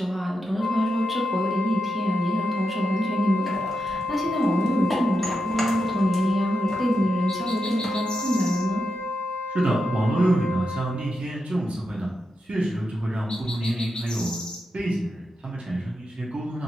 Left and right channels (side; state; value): both; normal; correlation 0.87